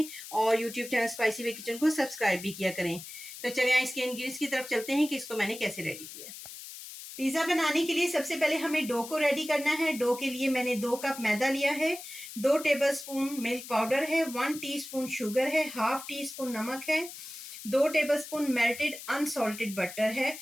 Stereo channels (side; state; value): left; noise; hiss, 12 dB below the sound